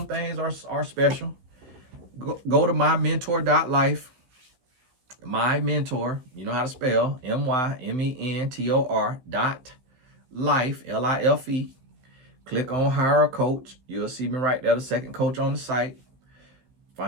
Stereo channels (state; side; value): late; left; 16 ms